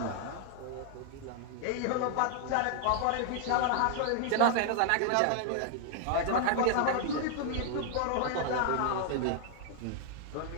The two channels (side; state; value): both; different; correlation 0.00